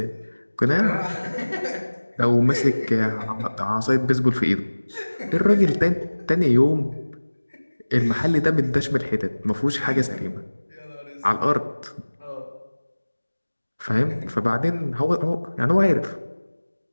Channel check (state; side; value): inverted; both; correlation -1.00